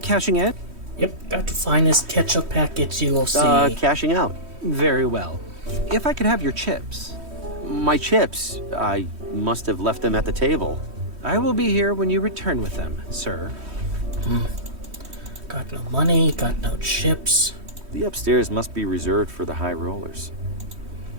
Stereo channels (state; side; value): late; left; 3.1 ms